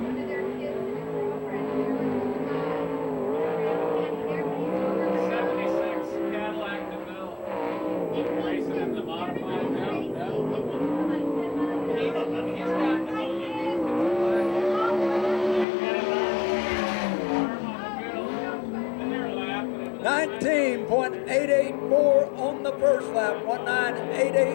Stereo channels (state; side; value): drops out; right; at 15.7 s